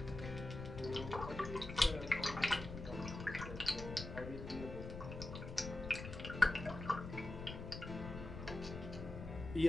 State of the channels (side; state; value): left; noise; rumble, 8 dB below the sound